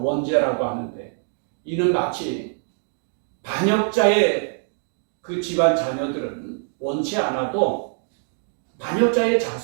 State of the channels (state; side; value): silent; left; 58 dB below the other